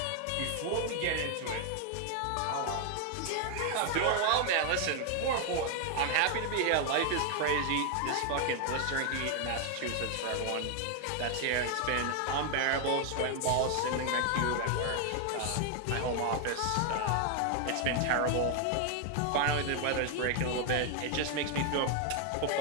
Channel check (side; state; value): both; different; correlation 0.00